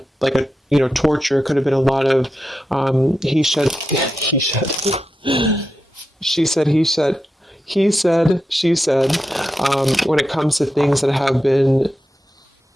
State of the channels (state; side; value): normal; both; correlation 0.89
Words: torture, could have been a lot of he said, she said, he said, he said, she said, when it comes to things that have been